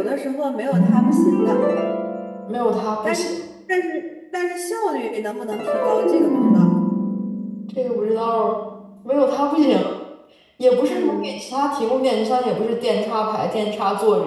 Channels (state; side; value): identical; both; correlation 1.00